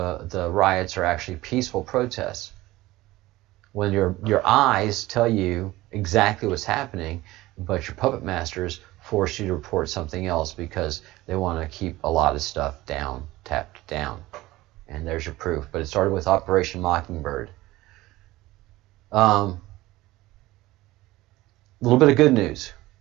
riots are actually peaceful protests. When your eyes tell you exactly what's happening, but your puppet masters force you to report something else because they want to keep a lot of stuff tapped down. And there's your proof. But it started with Operation Mockingbird. A little bit of good news.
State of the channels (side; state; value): left; quieter; 18.1 dB